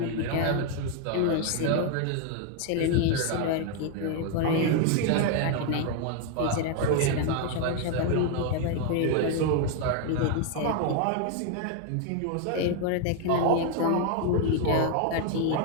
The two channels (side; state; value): both; different; correlation 0.00